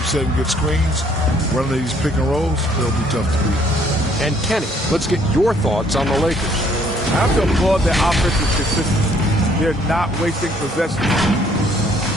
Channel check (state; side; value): normal; both; correlation 0.63